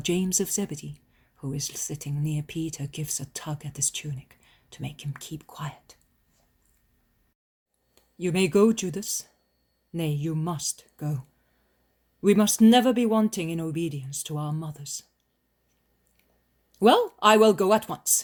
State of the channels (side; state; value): both; identical; correlation 1.00